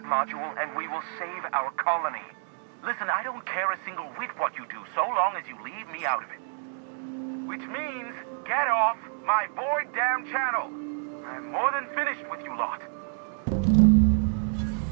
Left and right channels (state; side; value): silent; left; 59 dB below the other